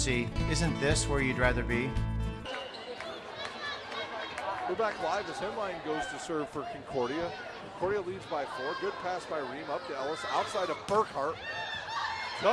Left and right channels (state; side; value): identical; both; correlation 1.00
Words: isn't this where you'd rather be? We're back live as Henline goes to serve for Concordia. Concordia leads by 4. Good pass by Ream up to Ellis. Outside of Burkhart.